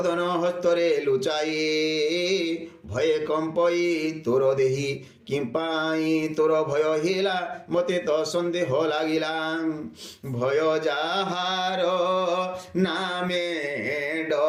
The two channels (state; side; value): identical; both; correlation 1.00